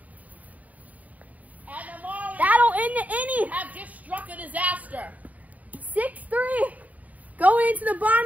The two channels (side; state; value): left; late; 0.073 ms